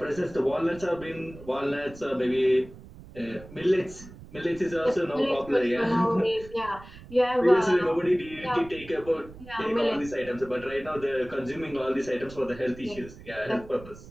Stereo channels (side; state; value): right; noise; rumble, 18 dB below the sound